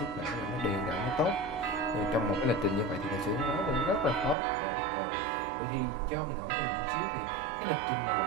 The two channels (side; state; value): left; drops out; at 4.4 s